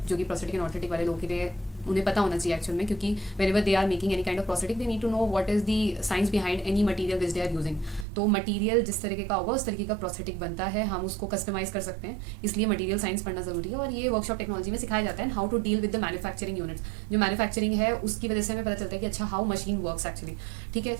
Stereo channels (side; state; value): left; drops out; at 8.1 s